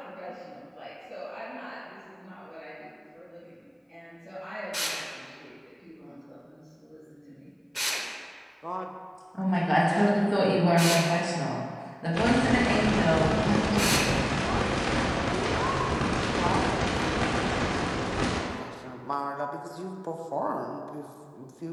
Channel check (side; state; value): both; identical; correlation 1.00